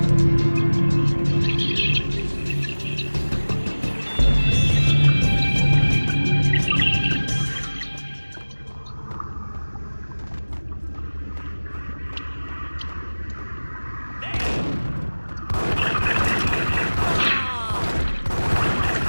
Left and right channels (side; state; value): both; inverted; correlation -1.00